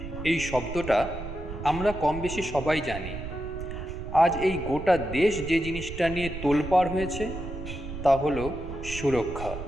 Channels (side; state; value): right; noise; rumble, 9 dB below the sound